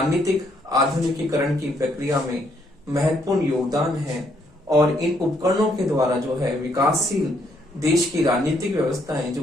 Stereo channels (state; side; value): normal; both; correlation 0.71